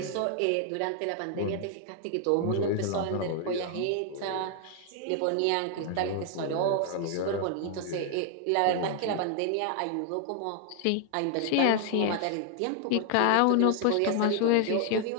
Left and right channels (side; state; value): both; different; correlation 0.00